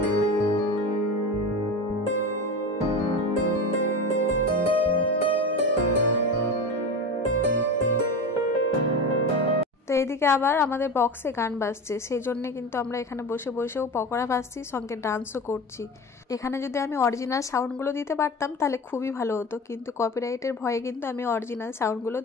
তো এদিকে আবার আমাদের বক্সে গান বাজছে, সেই জন্য কিন্তু আমরা এখানে বসে বসেও পকোড়া ভাজছি, সঙ্গে ডান্সও করছি। এখানে যদি আমি অরিজিনাল সাউন্ডগুলো দিতে পারতাম তাহলে খুবই ভালো হতো, কিন্তু কপিরাইটের ভয়ে কিন্তু আমি অরিজিনাল সাউন্ডগুলো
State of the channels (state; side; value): normal; both; correlation 0.27